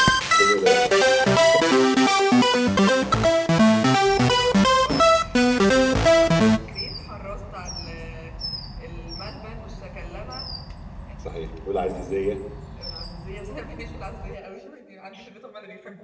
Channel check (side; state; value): both; identical; correlation 1.00